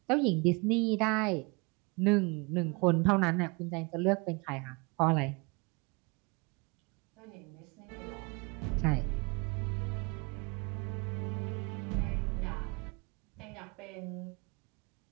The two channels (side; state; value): left; quieter; 29.4 dB